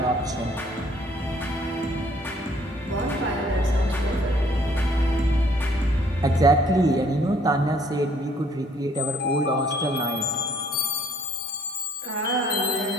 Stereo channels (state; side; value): normal; both; correlation 0.61